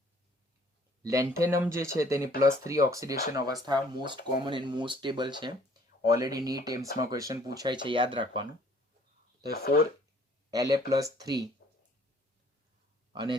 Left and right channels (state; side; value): normal; both; correlation 0.58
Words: લેન્થેનમ જે છે તેની +3 ઓક્સિડેશન અવસ્થા most common and most stable છે. ઓલરેડી નીટ એમ્સમાં ક્વેશ્ચન પૂછાય છે, યાદ રાખવાનું. તો 4La+3 અને